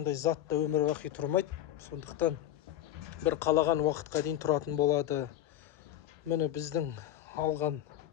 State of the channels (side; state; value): right; quieter; 12.5 dB